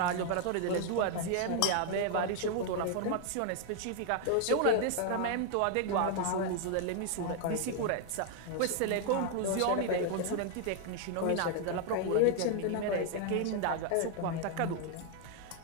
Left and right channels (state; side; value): different; both; correlation 0.00